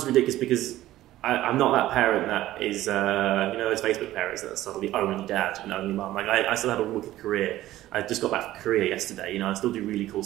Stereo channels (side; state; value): left; quieter; 14.9 dB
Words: ridiculous because I'm not that parent that is, those Facebook parents that are suddenly only dad and only mum. Like I still had a wicked career. I just got back from Korea yesterday. I still do really cool